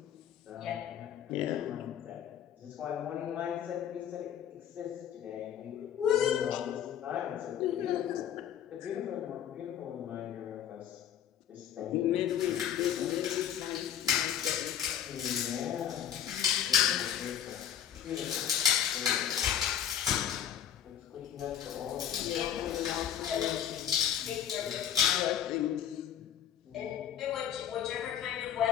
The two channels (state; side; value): quieter; right; 9.7 dB